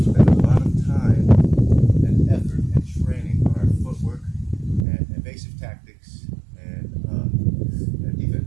spend a lot of time and effort and training on our footwork and evasive tactics and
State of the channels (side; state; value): left; drops out; at 4.9 s